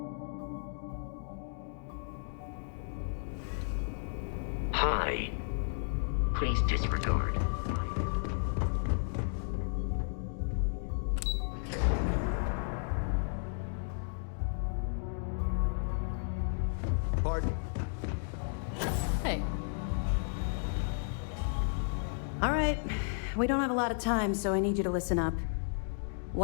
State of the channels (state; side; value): silent; right; digital silence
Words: Hi. Please disregard. Pardon? Hey. All right. We don't have a lot of time, so I need you to listen up.